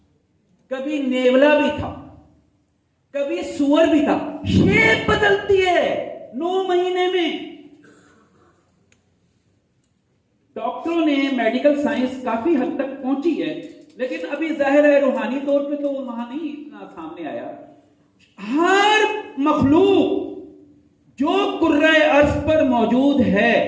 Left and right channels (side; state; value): both; identical; correlation 1.00